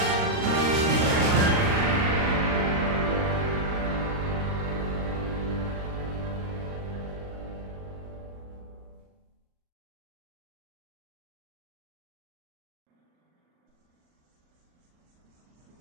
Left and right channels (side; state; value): left; late; 39 ms